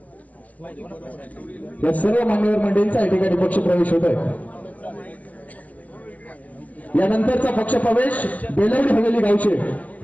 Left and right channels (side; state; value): right; late; 0.073 ms